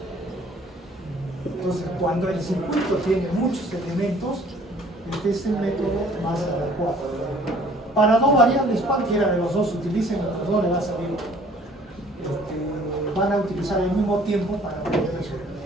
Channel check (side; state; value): both; normal; correlation 0.56